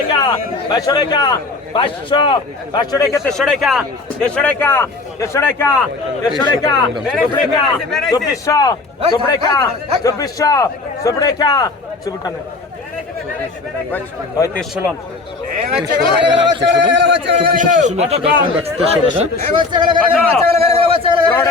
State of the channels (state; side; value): quieter; right; 3.7 dB